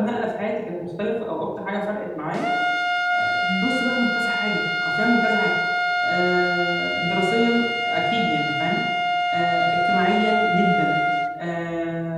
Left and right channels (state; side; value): identical; both; correlation 1.00